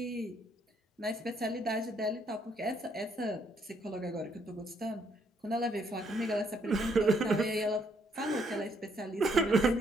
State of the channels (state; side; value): normal; both; correlation 0.71